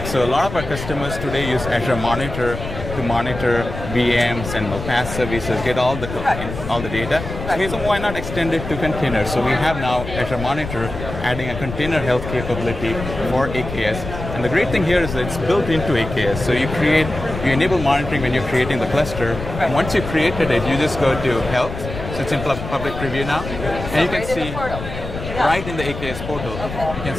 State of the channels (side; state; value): left; noise; rumble, 8 dB below the sound